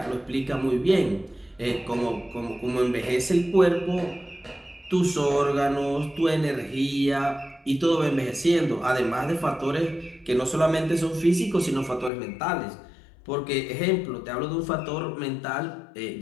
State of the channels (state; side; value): drops out; right; at 12.1 s